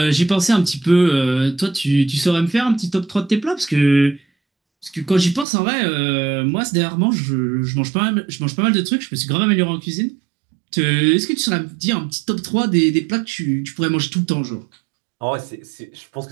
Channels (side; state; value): left; drops out; at 5.5 s